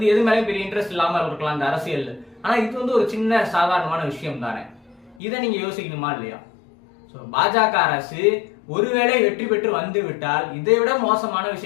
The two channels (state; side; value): drops out; right; at 5.2 s